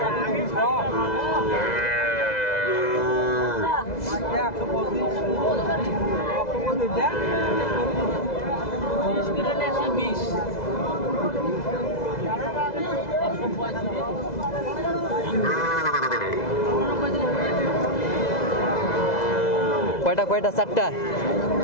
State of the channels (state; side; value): late; right; 2.0 ms